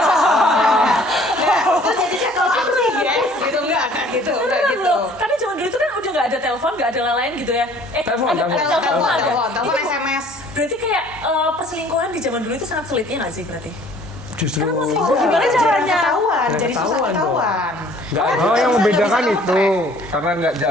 Terus jadinya kalau aku sih yes gitu enggak gitu enggak Bener gitu. loh. Tapi zaman dulu itu kan udah nggak ada telepon, nggak ada lain gitu ya. Telepon. Telepon Itu- SMS. Berarti kayak perselingkuhan di zaman dulu itu sangat sulitnya nggak sih berarti? Justru Oh, gimana caranya Jarang ketahuan? Jadi susah ketahuan dong. ketahuan. Nggak ada. Oh, yang Bisa membedakan kamu itu track. karena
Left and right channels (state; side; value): normal; both; correlation 0.54